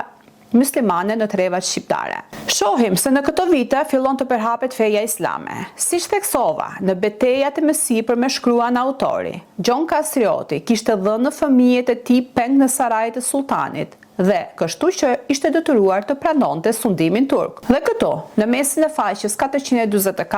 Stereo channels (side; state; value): both; identical; correlation 1.00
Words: muslimane në trevat shqiptare. Shohim se në këto vite fillon të përhapet feja islame. Siç theksova, në betejat e mësipër me shkruan autori, Gjon Kastrioti kishte dhënë fëmijët e tij peng në sarajt e sultanit, dhe kështu që ishte detyruar të pranonte sundimin turk. Dhe këtu, në mesin e faqes